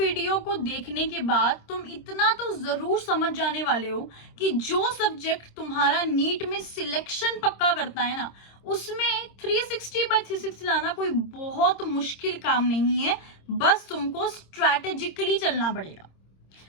को देखने के बाद तुम इतना तो जरूर समझ जाने वाले हो कि जो सब्जेक्ट तुम्हारा नीट में सिलेक्शन पक्का करता है ना, उसमें 360 by 360 लाना कोई बहुत मुश्किल काम नहीं है। बस तुमको स्ट्रैटेजिकली चलना पड़ेगा।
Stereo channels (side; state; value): right; late; 26 ms